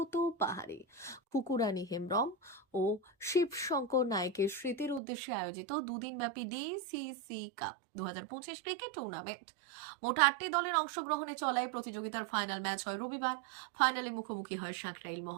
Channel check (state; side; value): drops out; left; at 5.0 s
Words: পাহাড়ি, কুকুরানী হেমব্রম ও শিবশঙ্কর নায়েকের স্মৃতির উদ্দেশ্যে আয়োজিত দুদিনব্যাপী ডিসিসি কাপ 2025 ক্রিকেট টুর্নামেন্ট। মোট 8টি দলের অংশগ্রহণে চলায় প্রতিযোগিতার ফাইনাল ম্যাচ হয় রবিবার। ফাইনালে মুখোমুখি হয় সাঁকরাইল